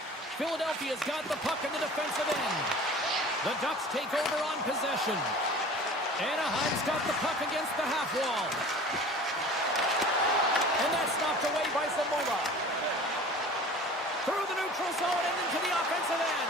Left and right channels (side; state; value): both; normal; correlation 0.42